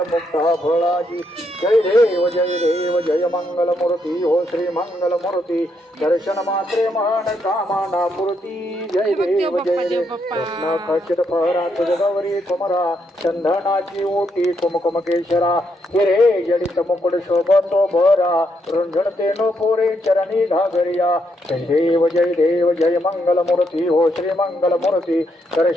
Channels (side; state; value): both; normal; correlation 0.77